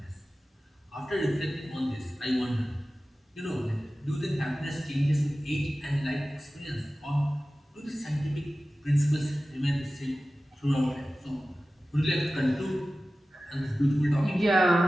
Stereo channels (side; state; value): both; normal; correlation 0.96